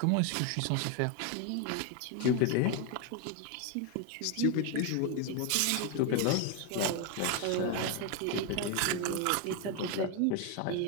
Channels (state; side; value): different; both; correlation 0.01